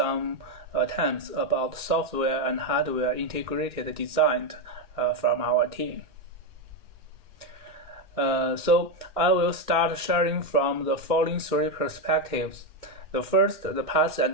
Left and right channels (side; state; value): left; late; 2.1 ms